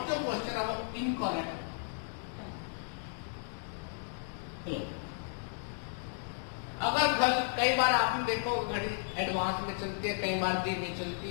जो क्वेश्चन है वो इनकरेक्ट। अगर कई बार आपने देखो घड़ी एडवांस में चलती है, कई बार धीमी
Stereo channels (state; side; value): silent; right; digital silence